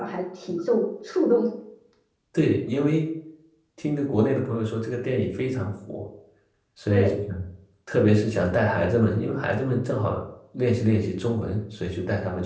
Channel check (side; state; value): both; identical; correlation 1.00